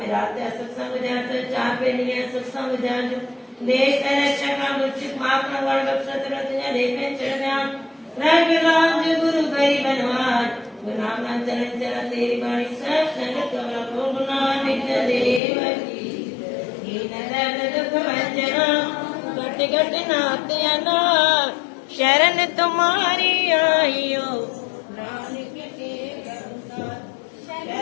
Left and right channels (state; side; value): drops out; right; at 15.4 s